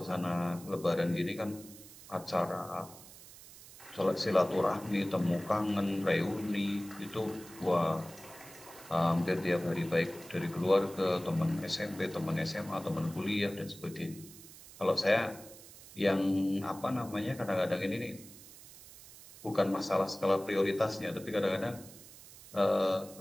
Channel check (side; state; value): right; noise; hiss, 18 dB below the sound